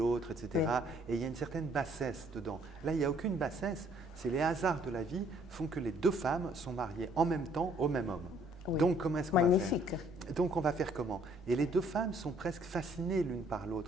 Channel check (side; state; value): both; normal; correlation 0.62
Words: etc. Oui. Et il y a une certaine bassesse dedans. Là, il n'y a aucune bassesse. C'est les hasards de la vie font que les deux femmes sont mariées en même temps au même homme. Oui. Donc, comment est-ce qu'on va faire? Magnifique. Donc, on va faire comment? Et les deux femmes sont presque fascinées l'une par